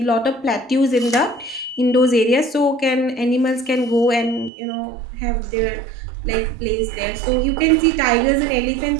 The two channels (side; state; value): left; drops out; at 4.5 s